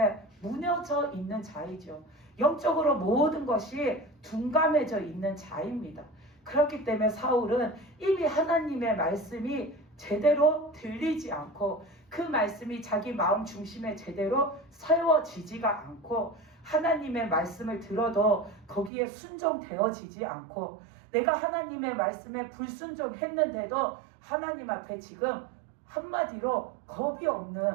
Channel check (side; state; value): left; drops out; at 18.9 s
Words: 무너져 있는 자이죠. 영적으로 모든 것이 둔감해져 있는 자입니다. 그렇기 때문에 사울은 이미 하나님의 말씀이 제대로 들리지 않고 그 말씀이 자기 마음 중심에 제대로 세워지지가 않고 하나님의 말씀을 들어도 거기에 순종되어지지 않고 내가 하나님의 말씀에 불순종했는데도 하나님 앞에 지금 한마디로 겁이